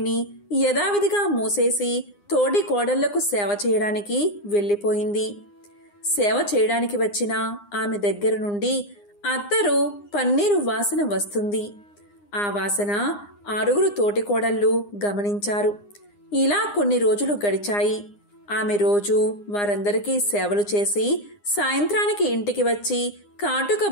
యథావిధిగా మూసేసి తోడి కోడళ్లకు సేవ చేయడానికి వెళ్ళిపోయింది. సేవ చేయడానికి వచ్చిన ఆమె దగ్గర నుండి అత్తరు, పన్నీరు వాసన వస్తుంది. ఆ వాసన 6 తోటికోడళ్ళు గమనించారు. ఇలా కొన్ని రోజులు గడిచాయి. ఆమె రోజు వారందరికీ సేవలు చేసి సాయంత్రానికి ఇంటికి వచ్చి కాటుక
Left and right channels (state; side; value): late; right; 9.8 ms